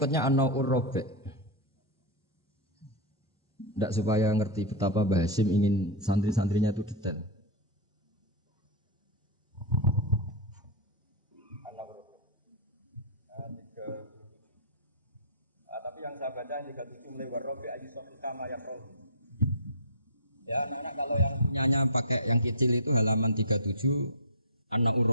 An-Na'ur Rabi'. Tidak supaya ngerti betapa Mbah Hasyim ingin santri-santrinya itu detail. Tapi yang saya baca yang 37 mulai warrobi aji sofi kama ya roh. Ya, anak kalau yang punyanya pakai yang kecil itu halaman 37 anak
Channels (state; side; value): normal; both; correlation -0.10